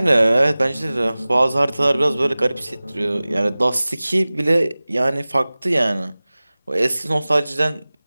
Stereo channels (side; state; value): both; inverted; correlation -0.99